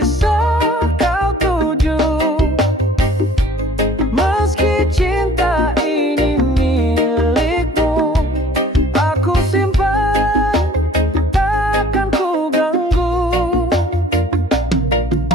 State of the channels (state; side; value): normal; both; correlation 0.51